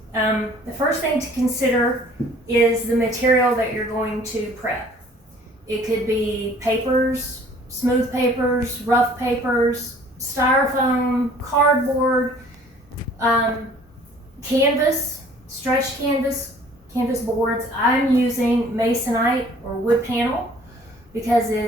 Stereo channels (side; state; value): both; normal; correlation 0.53